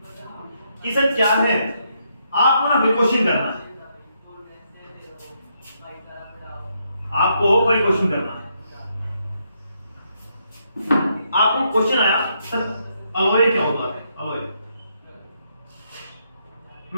कि सर क्या है, आपको ना क्वेश्चन करना है, आपको कोई क्वेश्चन करना है। आपको क्वेश्चन आया सर अलॉय क्या होता है? अलॉय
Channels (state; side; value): inverted; both; correlation -0.77